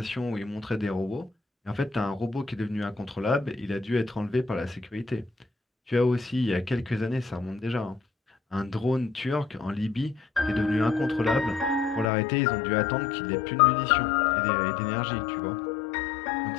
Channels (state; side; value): drops out; right; at 12.1 s